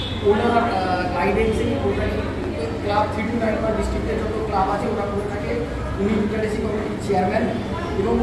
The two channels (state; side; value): identical; both; correlation 1.00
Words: ওনার গাইডেন্সেই ওটা ক্লাব 3 to 9 ডিস্ট্রিক্টের যত ক্লাব আছে ওরা করে থাকে। উনি লিটারেসি কমিটির চেয়ারম্যান এবং